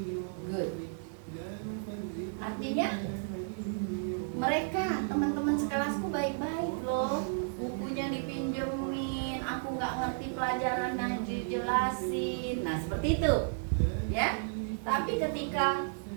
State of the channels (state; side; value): silent; left; digital silence